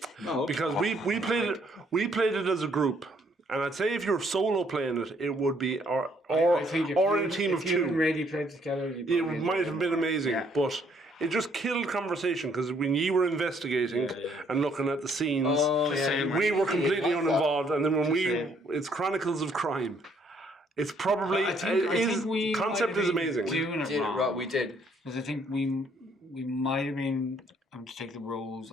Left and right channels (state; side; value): normal; both; correlation 0.67